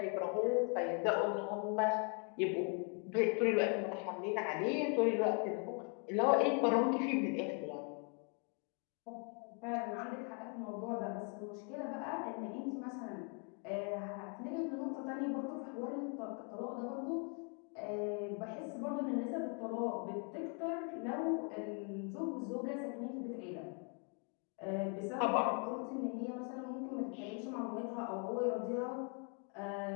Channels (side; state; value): right; quieter; 38.0 dB